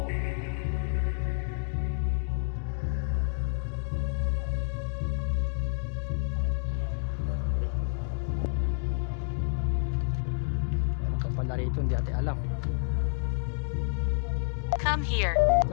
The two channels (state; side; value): silent; right; digital silence